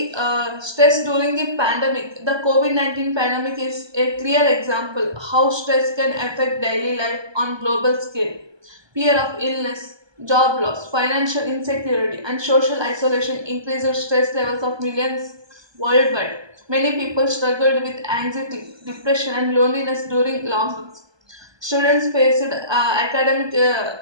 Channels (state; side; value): late; left; 1.2 ms